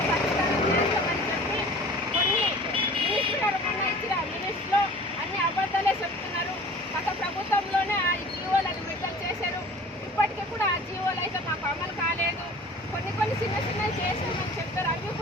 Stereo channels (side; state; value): both; normal; correlation 0.44